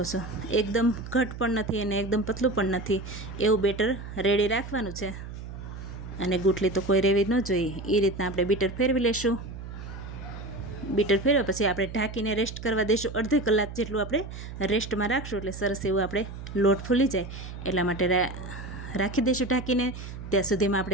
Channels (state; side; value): noise; right; hum, 10 dB below the sound